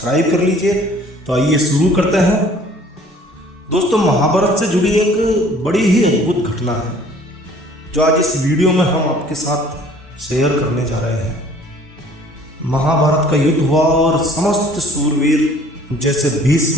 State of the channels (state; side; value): normal; both; correlation 0.54